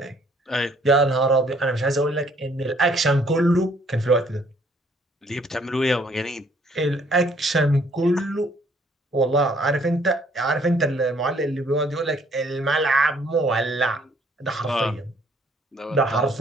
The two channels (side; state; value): both; normal; correlation 0.63